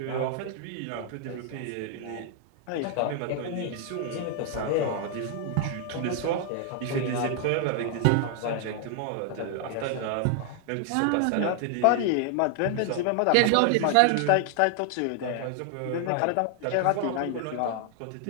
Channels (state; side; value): different; both; correlation 0.00